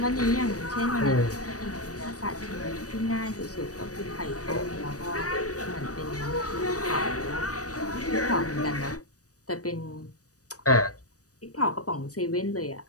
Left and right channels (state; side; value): late; right; 0.66 ms